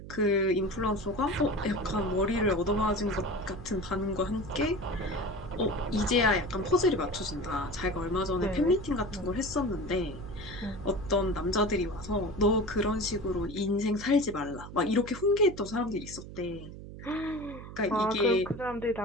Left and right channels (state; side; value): noise; right; hum, 13 dB below the sound